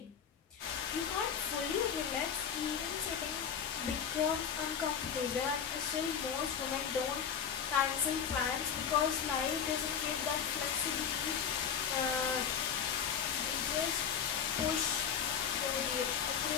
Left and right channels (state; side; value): quieter; right; 7.6 dB